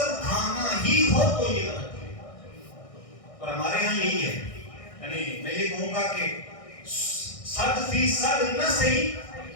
کھانا ہی ہو تو یہ غلط ہے، اور ہمارے ہاں یہی ہے، یعنی میں یہ کہوں گا کہ 100% نہ صحیح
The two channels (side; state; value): right; late; 1.6 ms